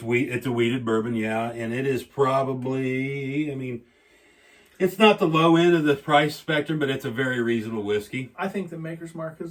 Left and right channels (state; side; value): identical; both; correlation 1.00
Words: a wheated bourbon, yeah, and it is probably, I mean, it's not the low end of the price spectrum, but it's a very reasonable whiskey. I think the Maker's Mark